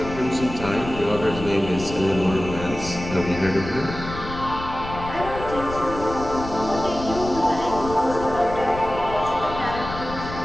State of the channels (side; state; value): left; noise; rumble, 10 dB below the sound